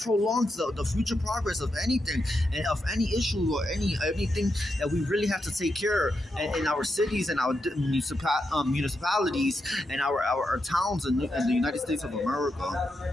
prolongs the future progress of anything and of any issue or anything that we really have to take care of in our cities and our municipalities and our towns in the United States of America.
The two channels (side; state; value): both; normal; correlation 0.85